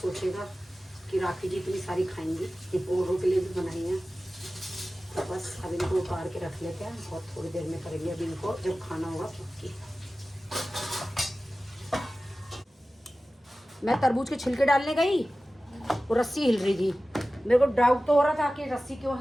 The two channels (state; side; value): normal; both; correlation 0.96